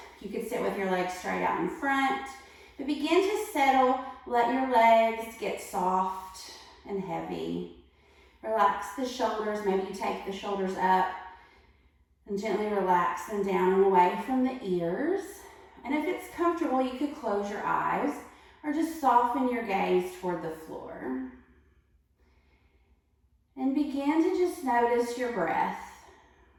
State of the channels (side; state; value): both; identical; correlation 1.00